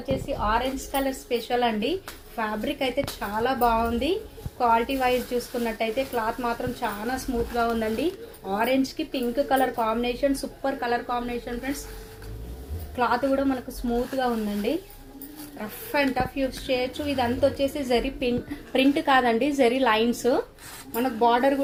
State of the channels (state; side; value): identical; both; correlation 1.00